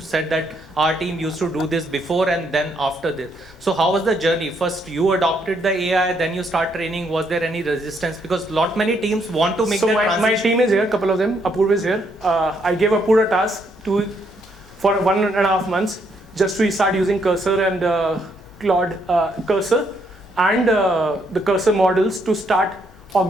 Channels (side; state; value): both; normal; correlation 0.73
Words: that our team used to do this before and then after this. So how was the journey? First you adopted the AI, then you start training. Was there any resistance? Because many teams want to make that transition. My team is here, couple of them. Apurv is here. I gave Apurv a task for 1.5 months just to start using Cursor and Claude Cursor and the Cursor models to start